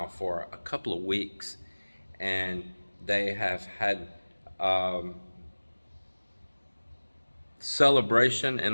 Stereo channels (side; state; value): both; inverted; correlation -1.00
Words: for a couple of weeks, and they have had celebration, in